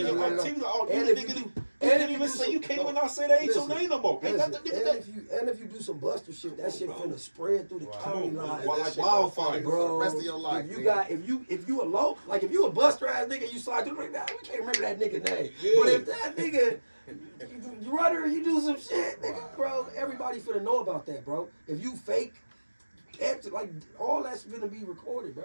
your they run activity, up. all And you if you nigga. You And can't if even do say some- you can't no, even not say that ain't your listen, name no more. Ain't Listen, that the nigga and that? if you do some buster shit, that shit Bro. finna spread through the Right. county Come on, line. bro. That Like shit gonna wildfire. follow you for Bro, the rest of your life. if you nigga. got if you a low, like if you a buster ass nigga, you slide through like that, we can't remember that nigga name. Yeah. But if that nigga you run her, you do some shit, nigga, Right, bro, right, everybody finna know about that, bro. If you fake, like all that's gonna be recorded,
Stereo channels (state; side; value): inverted; both; correlation -1.00